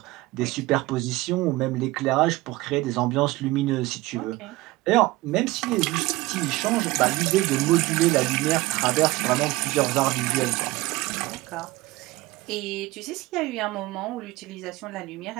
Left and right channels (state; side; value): quieter; left; 19.8 dB